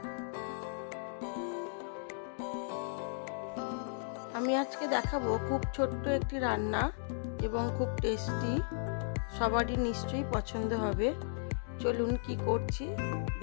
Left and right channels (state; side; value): silent; right; digital silence